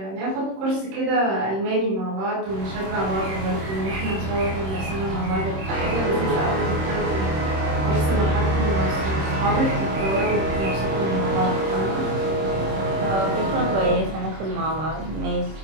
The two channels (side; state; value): left; late; 26 ms